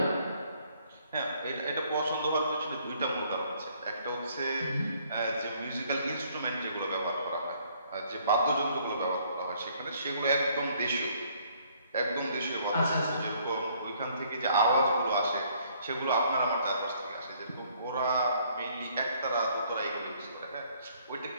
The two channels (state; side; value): inverted; both; correlation -0.64